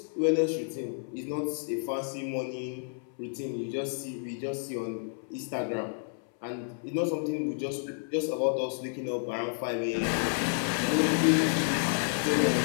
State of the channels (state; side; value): silent; right; 58 dB below the other